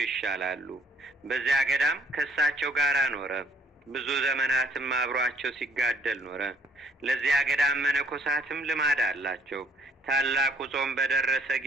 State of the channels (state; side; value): normal; both; correlation 0.62